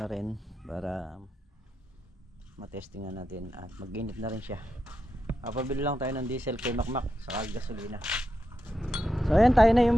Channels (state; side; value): normal; both; correlation 0.86